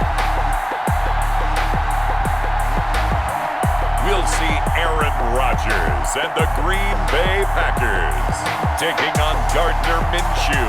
And the Green Bay Packers taking on Gardner Minshew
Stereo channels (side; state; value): both; identical; correlation 1.00